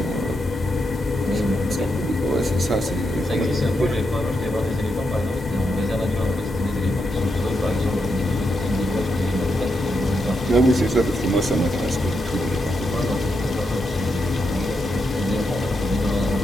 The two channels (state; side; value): normal; both; correlation 0.83